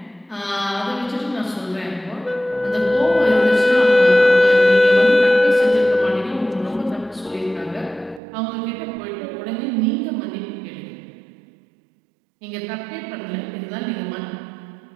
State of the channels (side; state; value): left; drops out; at 8.2 s